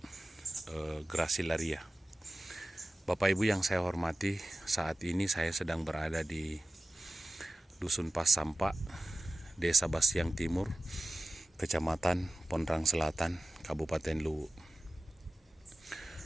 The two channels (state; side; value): normal; both; correlation 0.96